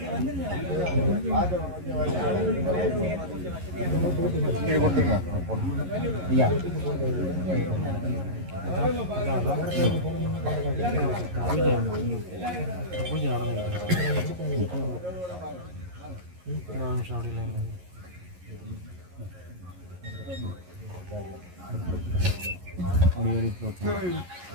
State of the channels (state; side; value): late; left; 11 ms